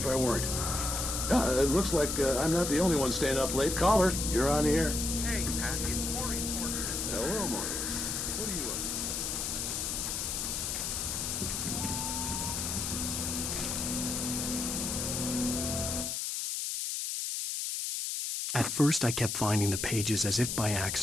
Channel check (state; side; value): noise; left; hiss, 2 dB below the sound